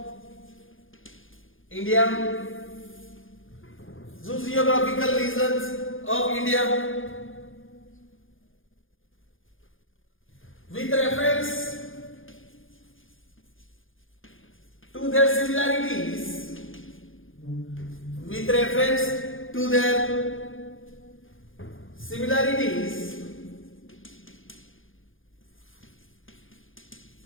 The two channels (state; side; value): late; right; 0.58 ms